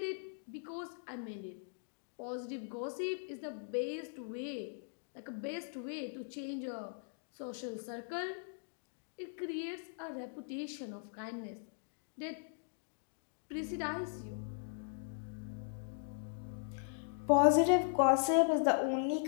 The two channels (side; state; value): right; silent; digital silence